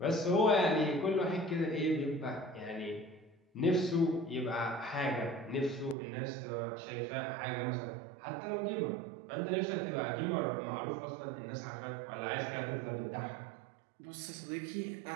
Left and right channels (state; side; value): drops out; left; at 6.0 s